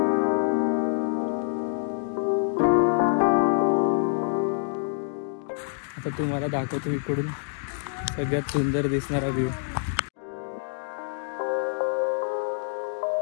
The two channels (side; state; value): right; silent; digital silence